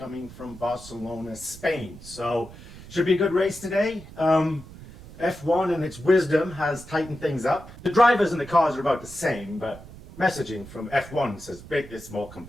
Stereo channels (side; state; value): right; noise; rumble, 17 dB below the sound